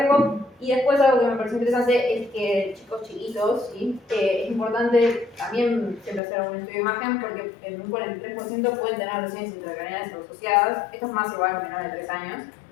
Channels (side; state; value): right; drops out; at 6.2 s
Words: Y después algo que me pareció interesante es que chicos chiquitos, ¿sí? Es importante también siempre hacer un estudio de imagen, porque en un 43% pueden tener lesiones intracraneales asociadas. Esto es más igual a menores de 3 años,